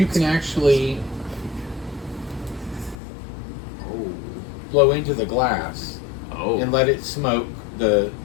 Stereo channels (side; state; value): right; drops out; at 3.0 s